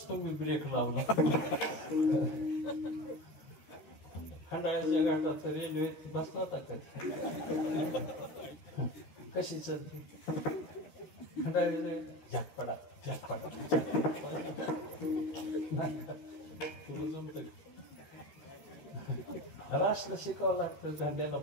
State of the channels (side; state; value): right; late; 12 ms